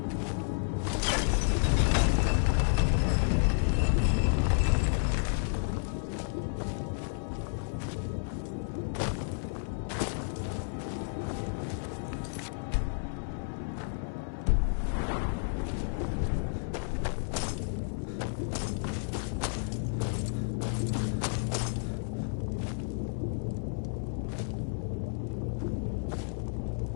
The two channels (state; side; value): silent; right; 57 dB below the other